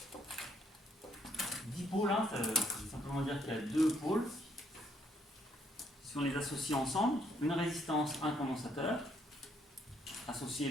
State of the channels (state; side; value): normal; both; correlation 0.70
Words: Dipôle, hein, ça veut simplement dire qu'il y a deux pôles. Si on les associe ensemble, une résistance, un condensateur, associés